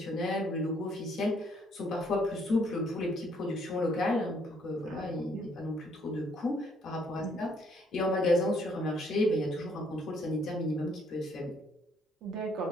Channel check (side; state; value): both; normal; correlation 0.67